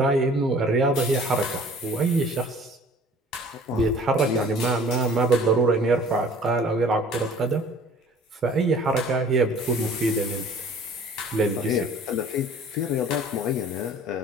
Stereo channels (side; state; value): both; normal; correlation 0.49